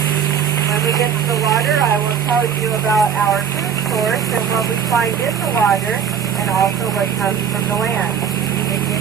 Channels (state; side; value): quieter; left; 7.8 dB